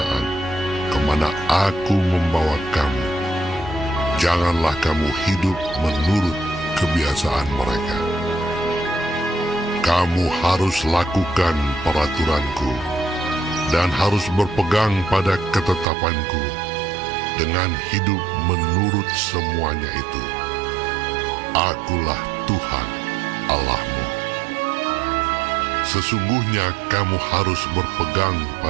kemana aku membawa kamu. Janganlah kamu hidup menurut kebiasaan mereka. Kamu harus lakukan peraturanku, dan harus berpegang pada ketetapanku, dengan hidup menurut semuanya itu. Akulah Tuhan Allahmu. Sesungguhnya kamu harus berpegang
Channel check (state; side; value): drops out; left; at 15.9 s